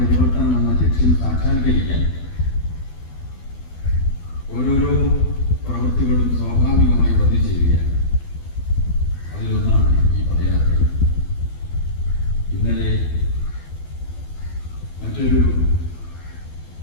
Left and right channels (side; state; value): right; late; 12 ms